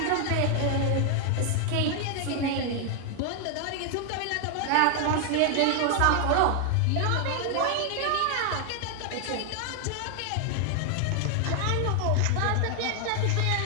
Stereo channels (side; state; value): both; different; correlation 0.00